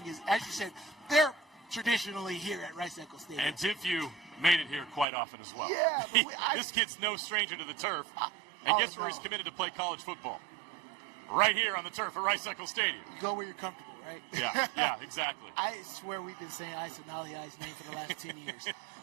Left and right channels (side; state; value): left; drops out; at 5.1 s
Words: is, as you said, they're traditionally here at Rice-Eccles Stadium. And Timpview made it here quite often as well. Yeah. This kid's no stranger to the turf. And guess where he's committed to play college football? Right here on the turf at Rice-Eccles Stadium. You go where you're comfortable, right? Yeah, exactly. I swear we've been saying Isa Naliai's name for the last 10 years.